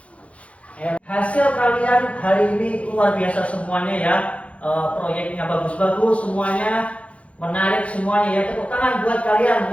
Hasil kalian hari ini luar biasa semuanya ya. Proyeknya bagus-bagus semuanya, menarik semuanya ya. Tepuk tangan buat kalian,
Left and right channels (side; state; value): right; late; 0.063 ms